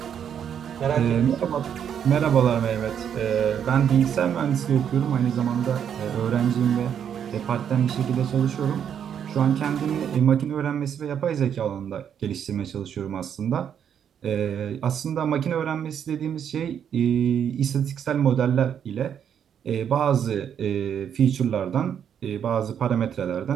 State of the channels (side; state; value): left; quieter; 8.5 dB